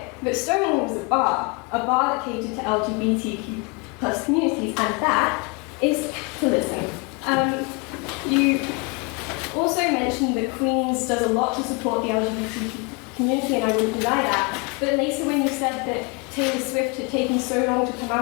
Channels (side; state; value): right; quieter; 30.3 dB